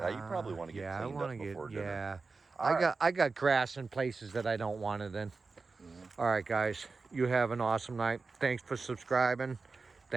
you probably want to get cleaned up before dinner. Yeah, Right. I got grass in places that I don't want it in. All right, guys, you have an awesome night. Thanks for subscribing.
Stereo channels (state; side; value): quieter; left; 4.2 dB